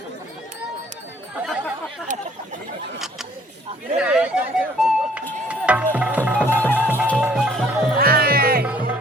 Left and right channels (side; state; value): both; normal; correlation 0.59